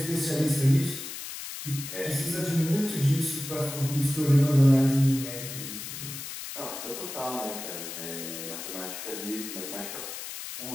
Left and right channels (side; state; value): left; noise; hiss, 8 dB below the sound